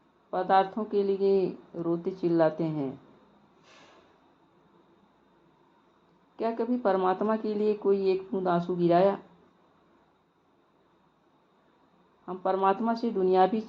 पदार्थों के लिए रोते चिल्लाते हैं। क्या कभी परमात्मा के लिए कोई एक बूंद आंसू गिराया? हम परमात्मा से दुनियावी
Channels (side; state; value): both; identical; correlation 1.00